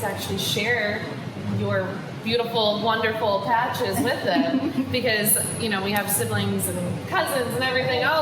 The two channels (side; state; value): both; identical; correlation 1.00